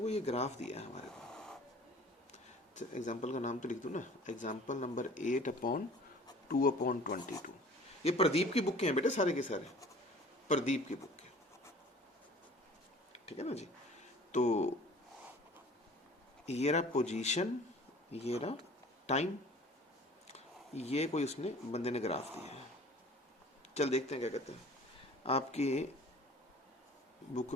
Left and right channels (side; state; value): both; normal; correlation 0.48